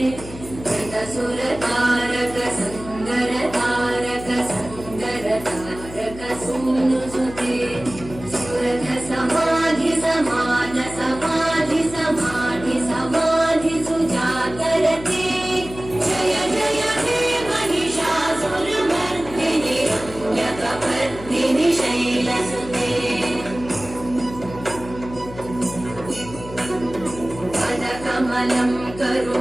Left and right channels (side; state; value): left; noise; hum, 14 dB below the sound